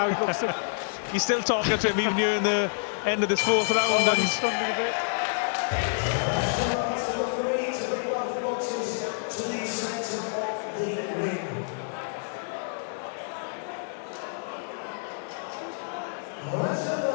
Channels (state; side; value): silent; right; 59 dB below the other